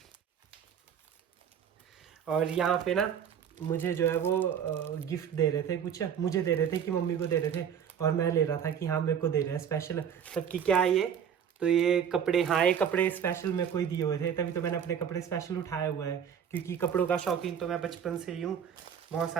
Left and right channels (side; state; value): left; quieter; 8.2 dB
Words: और यहाँ पे ना मुझे जो है वो गिफ्ट दे रहे थे, कुछ मुझे दे रहे थे कि मम्मी को दे रहे थे, और मैं ले रहा था कि हाँ मेरे को दे रहे हैं स्पेशल। तब कि क्या है ये, तो ये कपड़े, हाँ ये कपड़े स्पेशल मेरे को ही दिए हुए थे, तभी तो मैंने अपने कपड़े स्पेशल उठाए हुए हैं, क्योंकि कपड़ों का शौकीन तो मैं बचपन से ही हूँ। बहुत